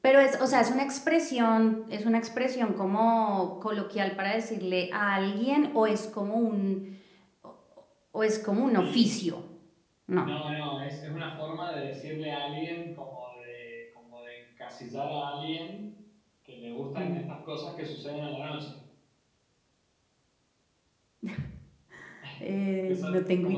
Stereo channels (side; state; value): both; identical; correlation 1.00